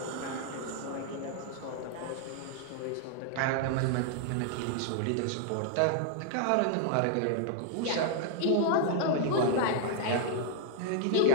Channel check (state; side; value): different; both; correlation -0.01